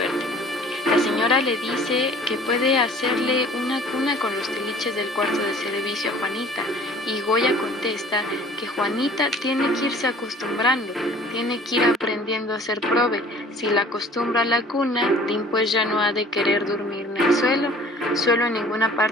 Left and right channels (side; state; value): both; normal; correlation 0.50